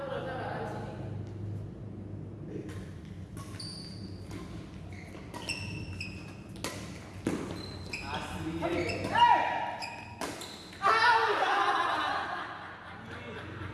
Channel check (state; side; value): identical; both; correlation 1.00